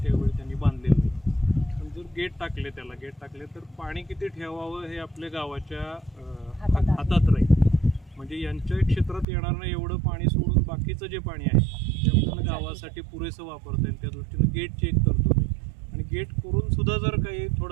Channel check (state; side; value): drops out; left; at 9.2 s